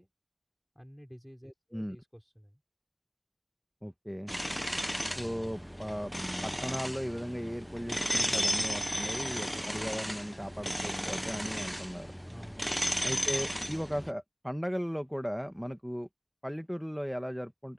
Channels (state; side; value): identical; both; correlation 1.00